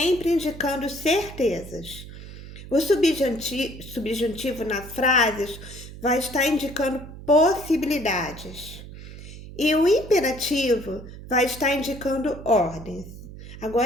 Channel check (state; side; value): noise; right; hum, 14 dB below the sound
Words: indicando certezas. O subjuntivo nas frases vai estar indicando possibilidades. E o imperativo vai estar indicando ordens.